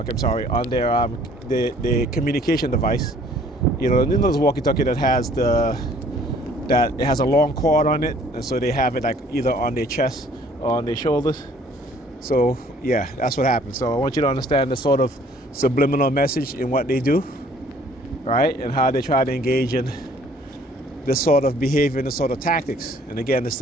I'm sorry, on their the communication device. You know those walkie-talkie that has it has a long cord on it, and so they have it like either on their chest or on their shoulders. So yeah, that's what happens. So I want you to understand the sort of subliminal message in what they do, right? And how they try to engage in this sort of behavior and this sort of tactics. And again, it's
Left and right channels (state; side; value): normal; both; correlation 0.57